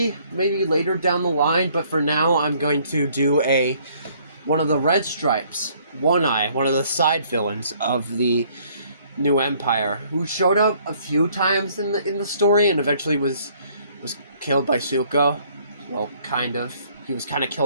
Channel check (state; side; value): inverted; both; correlation -0.62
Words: maybe later down the line, but for now I'm going to do one of the Red Stripes, One Eye, one of the side villains of the new Empire, who showed up a few times in the story and eventually was killed by Zuko. Well, kind of. He was kind of